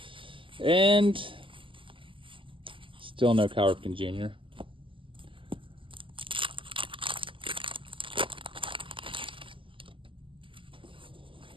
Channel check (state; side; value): late; left; 0.25 ms